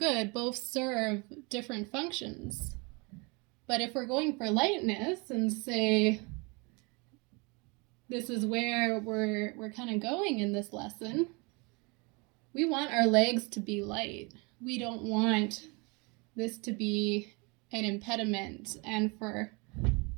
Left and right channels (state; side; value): quieter; left; 29.5 dB